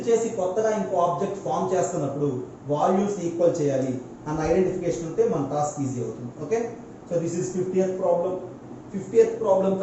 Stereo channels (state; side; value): identical; both; correlation 1.00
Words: చేసి కొత్తగా ఇంకో ఆబ్జెక్ట్ ఫామ్ చేస్తున్నప్పుడు వాల్యూమ్స్ ఈక్వల్ చేయాలి అన్న ఐడెంటిఫికేషన్ ఉంటే మన టాస్క్ ఈజీ అవుతుంది. Okay, so this is 50th problem. 50th problem